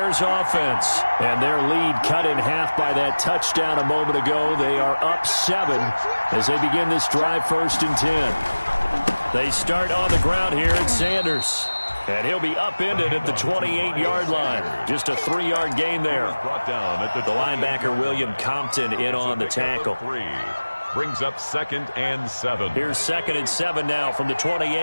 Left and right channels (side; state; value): both; inverted; correlation -1.00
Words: offense. And their lead cut in half by that touchdown a moment ago. They are up 7 as they begin this drive 1st and 10. They start on the ground here at Sanders. And he'll be upended at the 28-yard line. Just a 3-yard gain there. Brought down at the linebacker, William Compton, in on the tackle. Brings up 2nd and 7. Here's 2nd and 7 now from the